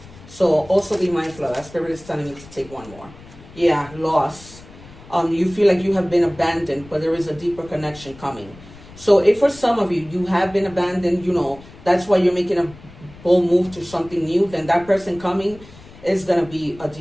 So also be mindful of that. Spirit is telling me to take one more. Yeah, loss. You feel like you have been abandoned, but there is a deeper connection coming. So if for some of you, you have been abandoned, you know, that's why you're making a bold move to something new, then that person coming is going to be a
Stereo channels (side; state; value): left; noise; rumble, 20 dB below the sound